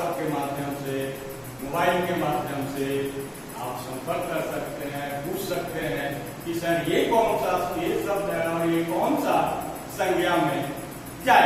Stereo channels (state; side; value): identical; both; correlation 1.00